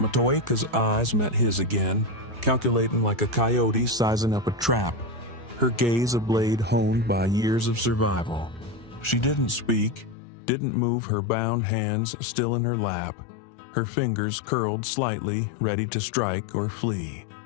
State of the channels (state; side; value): drops out; right; at 10.2 s